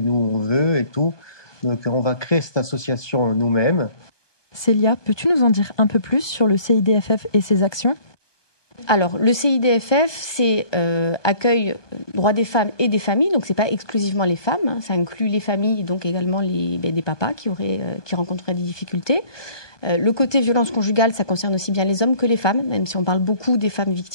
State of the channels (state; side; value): late; right; 1.2 ms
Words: on veut et tout. Donc, on va créer cette association nous-mêmes. Célia, peux-tu nous en dire un peu plus sur le CIDFF et ses actions ? Alors, le CIDFF, c'est accueil droits des femmes et des familles, donc c'est pas exclusivement les femmes, hein, ça inclut les familles, donc également des papas qui rencontreraient des difficultés. Le côté violence conjugale, ça concerne aussi bien les hommes que les femmes, même si on parle beaucoup des femmes